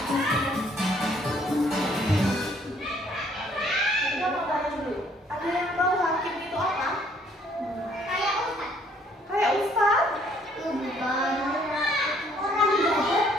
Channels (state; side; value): normal; both; correlation 0.63